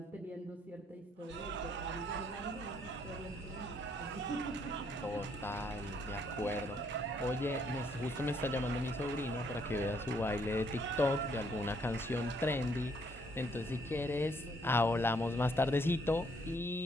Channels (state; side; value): normal; both; correlation 0.68